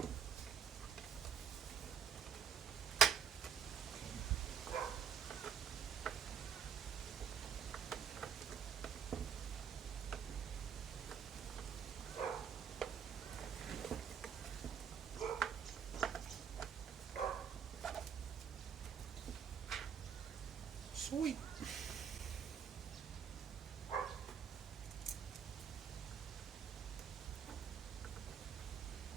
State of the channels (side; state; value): left; quieter; 7.6 dB